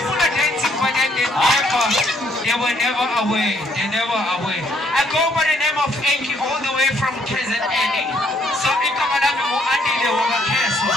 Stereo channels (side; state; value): both; normal; correlation 0.68